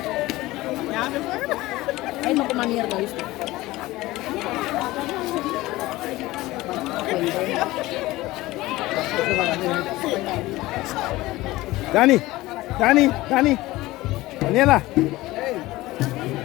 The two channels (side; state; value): right; quieter; 18.5 dB